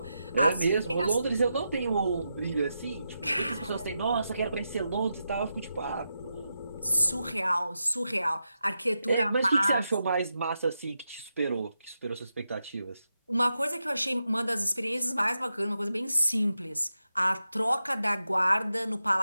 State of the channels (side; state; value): both; inverted; correlation -0.88